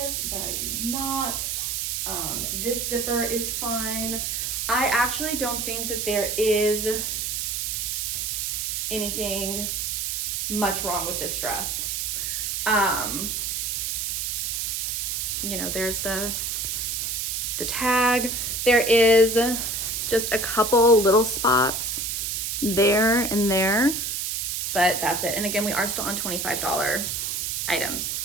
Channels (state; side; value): noise; right; hiss, 1 dB below the sound